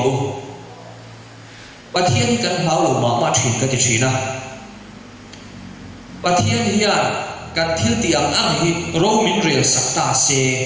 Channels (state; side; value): identical; both; correlation 1.00